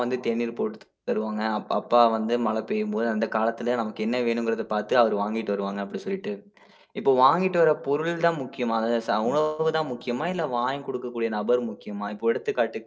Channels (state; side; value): identical; both; correlation 1.00